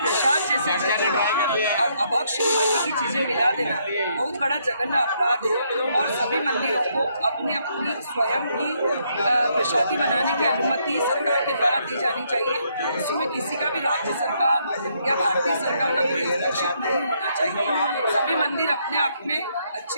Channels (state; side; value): inverted; both; correlation -0.73